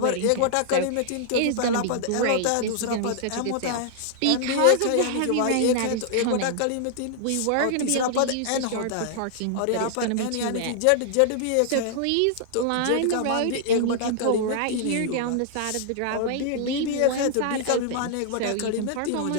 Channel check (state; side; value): different; both; correlation -0.01